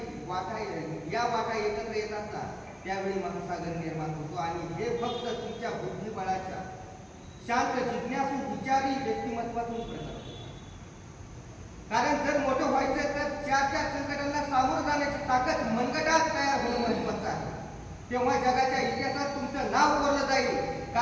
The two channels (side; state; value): both; identical; correlation 1.00